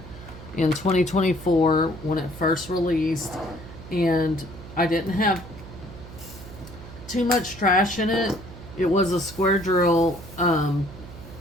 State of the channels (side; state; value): right; noise; hum, 15 dB below the sound